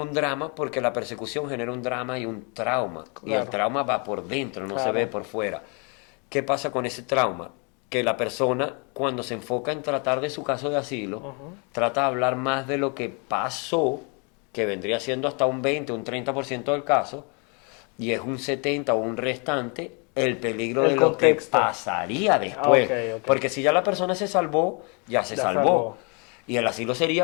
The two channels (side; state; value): right; quieter; 34.6 dB